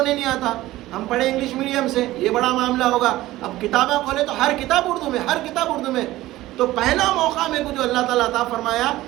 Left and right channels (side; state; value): left; quieter; 16.5 dB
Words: نہیں آتا، ہم پڑھے انگلش میڈیم سے، یہ بڑا معاملہ ہوگا. اب کتابیں کھولے تو ہر کتاب اردو میں، ہر کتاب اردو میں. تو پہلا موقع میرے کو جو اللہ تعالیٰ عطا فرمایا،